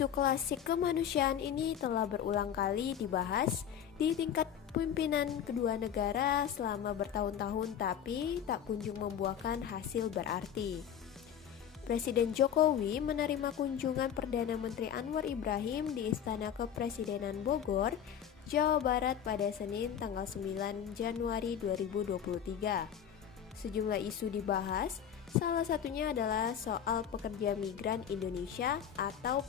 klasik kemanusiaan ini telah berulang kali dibahas di tingkat pimpinan kedua negara selama bertahun-tahun, tapi tak kunjung membuahkan hasil berarti. Presiden Jokowi menerima kunjungan Perdana Menteri Anwar Ibrahim di Istana Kepresidenan Bogor, Jawa Barat pada Senin tanggal 9 Januari 2023. Sejumlah isu dibahas, salah satunya adalah soal pekerja migran Indonesia atau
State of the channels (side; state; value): right; quieter; 9.0 dB